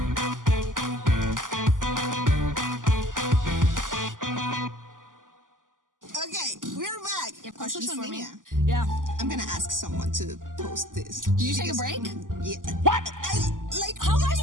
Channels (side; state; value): left; late; 0.88 ms